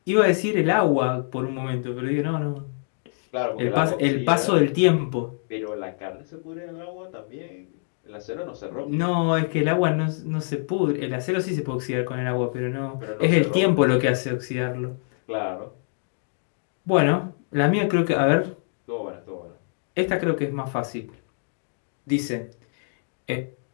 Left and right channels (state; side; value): silent; right; digital silence